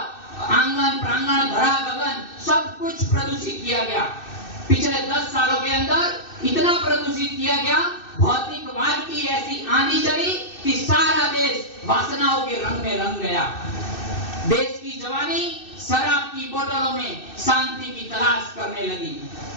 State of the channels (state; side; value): late; right; 2.6 ms